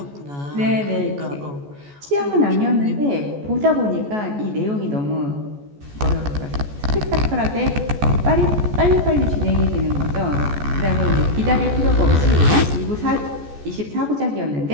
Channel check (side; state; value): left; late; 14 ms